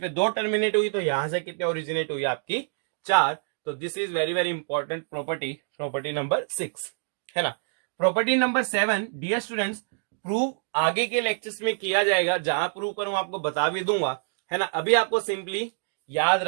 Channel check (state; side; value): silent; left; digital silence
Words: 2 टर्मिनेट हुई, तो यहां से कितने ओरिजिनेट हुई आपकी, 4। तो this is very very important property number 6, है ना। Property number 7, dear students, prove आगे के लेक्चर्स में किया जाएगा, जहां प्रूव करूं आपको बता भी दूंगा, है ना। अभी आपको सिंपली याद